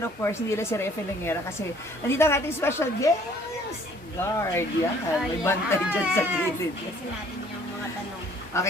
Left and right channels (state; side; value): normal; both; correlation 0.58